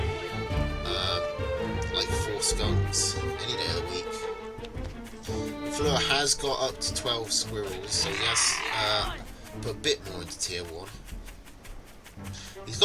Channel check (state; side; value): identical; both; correlation 1.00